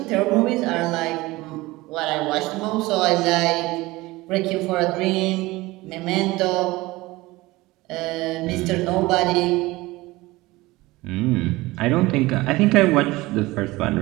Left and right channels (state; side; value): quieter; left; 20.2 dB